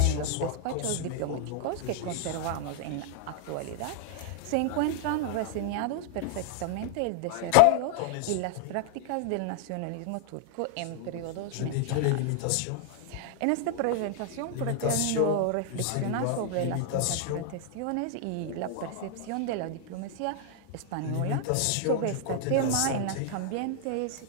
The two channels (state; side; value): different; both; correlation 0.00